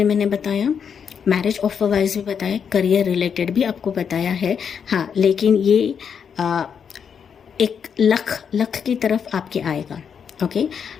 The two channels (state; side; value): quieter; right; 7.1 dB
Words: मैंने बताया, मैरिज ऑफर वाइज भी बताया, करियर रिलेटेड भी आपको बताया है। हाँ लेकिन ये एक लक की तरफ आपके आएगा। ओके